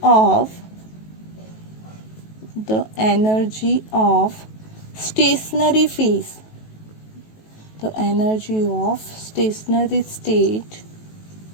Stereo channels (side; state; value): right; late; 18 ms